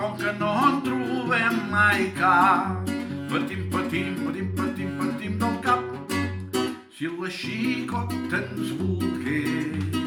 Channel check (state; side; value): identical; both; correlation 1.00